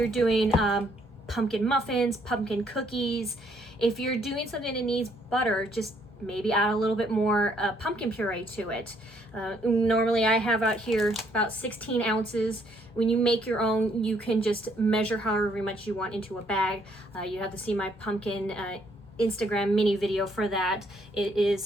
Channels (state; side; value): normal; both; correlation 0.68